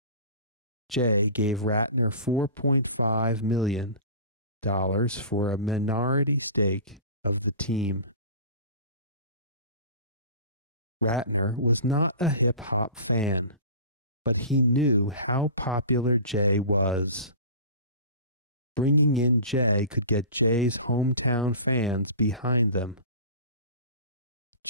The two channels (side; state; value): both; inverted; correlation -0.38